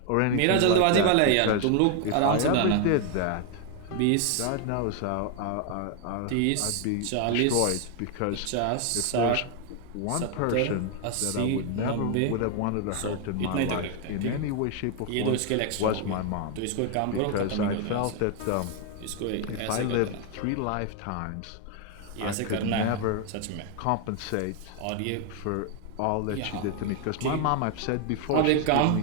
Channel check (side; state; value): both; different; correlation 0.00